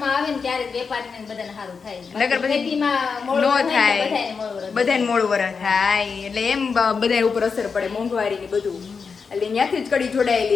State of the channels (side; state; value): right; quieter; 5.4 dB